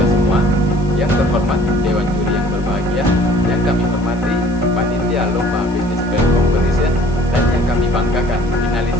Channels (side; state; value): right; noise; hiss, 26 dB below the sound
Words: semua. Yang terhormat Dewan Juri yang berbahagia, yang kami hormati Panitia Lomba Business Plan Competition, dan yang kami banggakan finalis